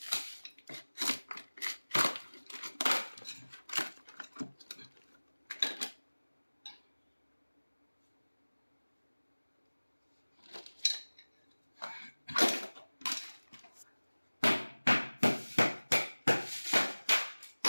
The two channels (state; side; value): inverted; both; correlation -1.00